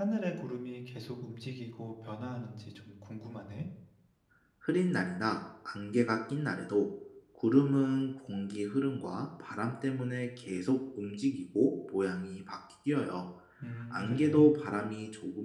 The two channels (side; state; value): both; identical; correlation 1.00